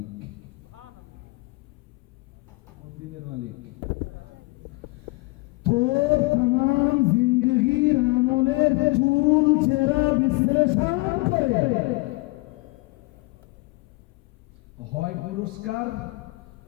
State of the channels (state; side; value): quieter; right; 24.9 dB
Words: কোন দিনের মালিক? তোর तमाम জিন্দেগির আমলের চুল চেরা বিশ্লেষণ করে হয় পুরস্কার